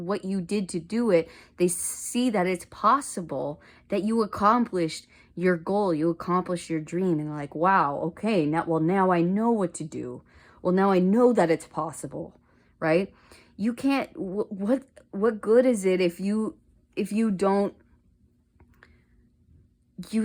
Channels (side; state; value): both; identical; correlation 1.00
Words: you did to do it. They see that it's possible, that you accomplished your goal, you accomplished your dream, and they're like, wow, okay, now I know what to do. Well, now I know that it's possible, right? You can't, what good is it if you don't